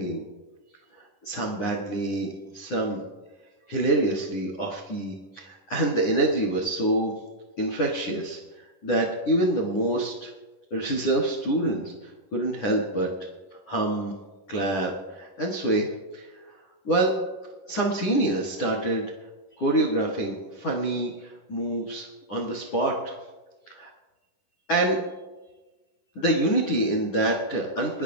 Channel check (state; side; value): late; right; 10 ms